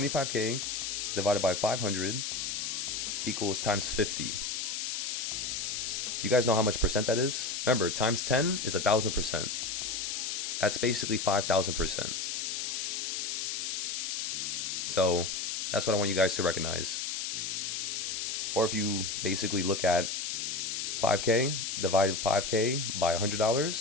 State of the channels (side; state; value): left; noise; hiss, 2 dB below the sound